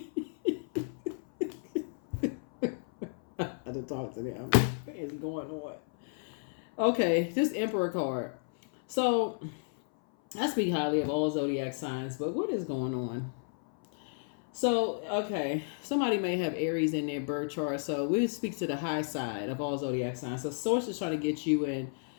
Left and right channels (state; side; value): silent; right; 56 dB below the other